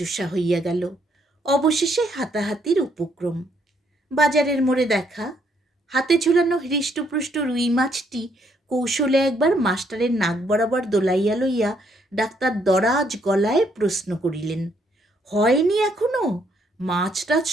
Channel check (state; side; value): normal; both; correlation 0.71